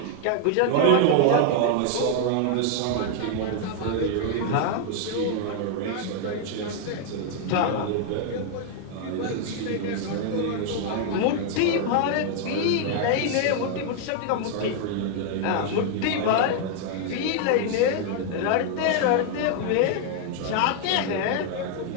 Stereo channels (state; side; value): different; both; correlation 0.00